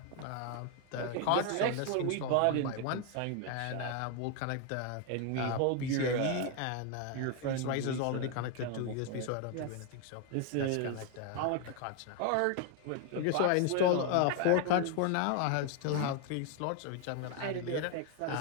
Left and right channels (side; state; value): both; different; correlation 0.01